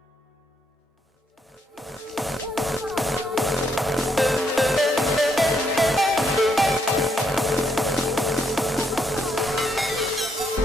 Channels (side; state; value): both; normal; correlation 0.75